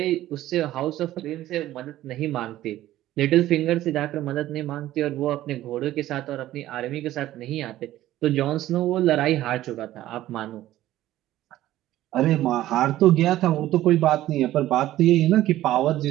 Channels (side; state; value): left; quieter; 14.4 dB